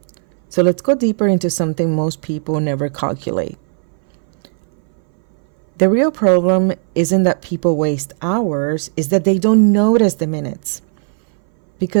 So let's go deeper into something most people never calculate. The real problem isn't that people waste hours, it's that they don't notice the minutes.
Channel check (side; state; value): left; silent; 62 dB below the other